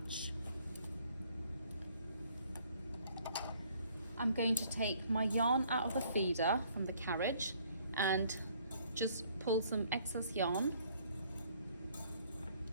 I'm going to take my yarn out of the feeder from the carriage and just pull some excess yarn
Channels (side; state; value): both; inverted; correlation -0.62